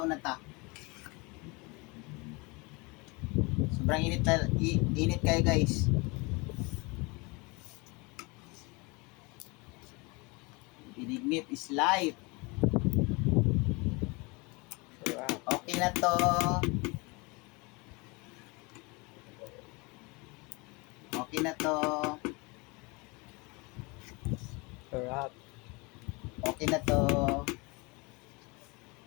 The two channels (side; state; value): right; quieter; 27.4 dB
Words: una ta. Sobrang init kayo guys. Binignit is life. Sarap. Okay na to. Okay na to. Sarap. Okay na to.